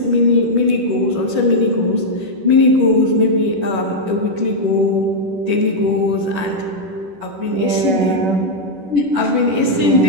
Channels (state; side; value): late; left; 11 ms